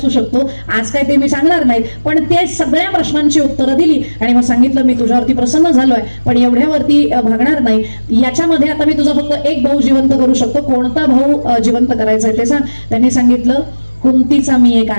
शकतो, आज काय ते मी सांगणार नाही. पण ते सगळ्या प्रश्नांची उत्तरं दिली आणि मग सांगितलं मी तुझ्यावरती प्रसन्न झालोय, पण एवढ्यावरती भागणार नाही. याच्यामध्ये आता मी तुझा फक्त एक भाऊ जिवंत करू शकतो, कोणता भाऊ जिवंत करायचा आहे ते सांग. त्यांनी सांगितलं कुंतीचा मी एक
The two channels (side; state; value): both; inverted; correlation -1.00